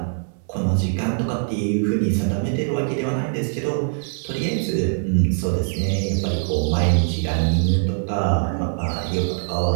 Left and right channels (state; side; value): silent; left; digital silence